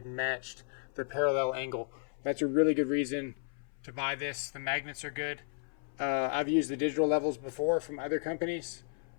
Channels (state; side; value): silent; right; 55 dB below the other